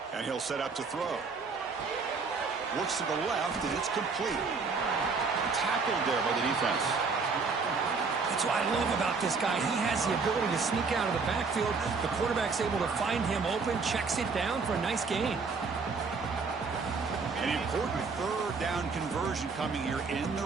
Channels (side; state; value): left; quieter; 4.7 dB